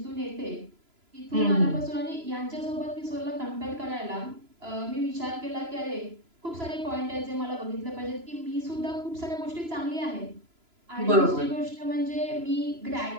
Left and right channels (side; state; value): left; late; 3.0 ms